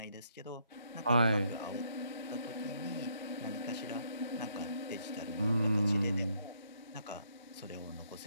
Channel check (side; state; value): both; inverted; correlation -0.72